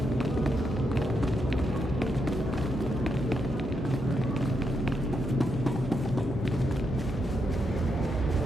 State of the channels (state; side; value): normal; both; correlation 0.81